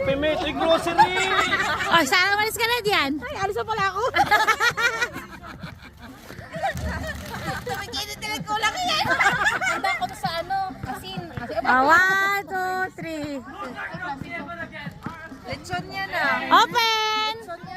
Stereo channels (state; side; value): identical; both; correlation 1.00